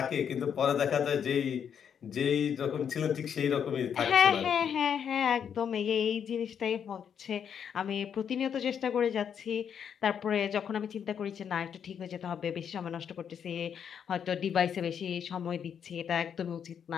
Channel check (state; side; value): quieter; right; 7.9 dB